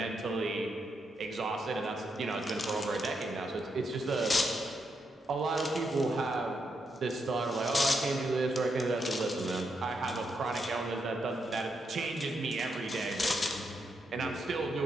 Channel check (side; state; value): both; normal; correlation 0.81